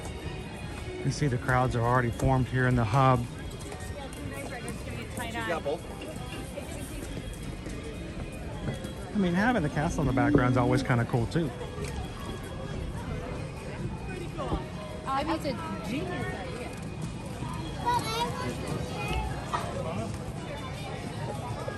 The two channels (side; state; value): both; identical; correlation 1.00